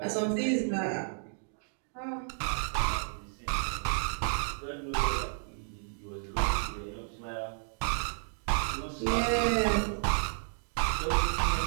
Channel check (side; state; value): left; silent; 57 dB below the other